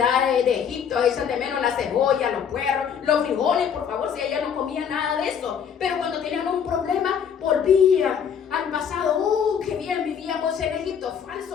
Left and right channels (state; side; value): quieter; right; 7.7 dB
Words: de Egipto, echan de menos la cebolla, los puerros, los frijoles, por favor, si ella no comía nada de eso. Pero cuando tenían un problema, volvían al pasado. Oh, qué bien vivíamos en Egipto.